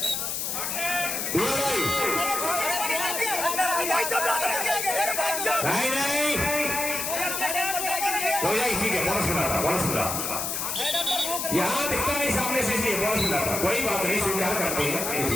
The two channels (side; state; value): left; noise; hiss, 2 dB below the sound